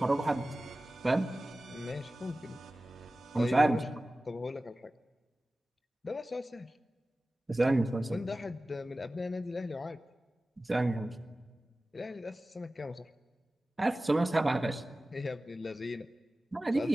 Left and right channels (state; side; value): normal; both; correlation 0.96